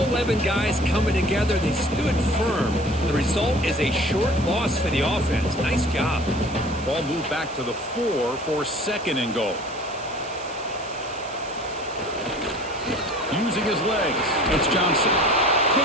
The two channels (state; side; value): noise; right; hiss, 17 dB below the sound